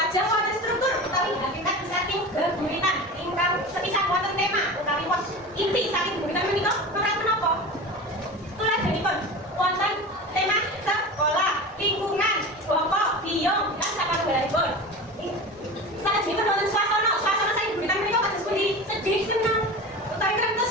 wonten struktur utawi hakikat saking geguritan ingkang sepisan wonten tema utawi was inti saking geguritan menika menapa? Tuladhanipun wonten tema sekolah, lingkungan, bapa, biyong lan sakalunggalanipun. Salajengipun wonten swasana saking geguritan menika kados pundi? Sedih, senang, utawi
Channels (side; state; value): both; normal; correlation 0.31